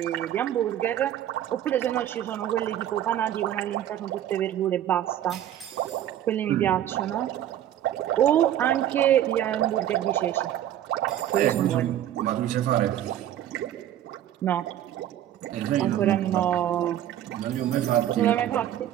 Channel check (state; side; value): quieter; left; 11.6 dB